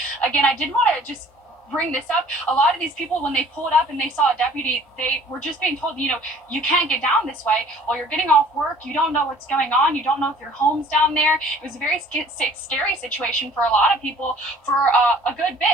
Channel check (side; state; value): both; normal; correlation 0.52